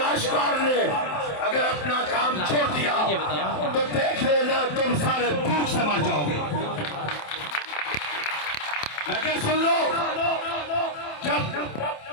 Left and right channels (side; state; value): right; late; 27 ms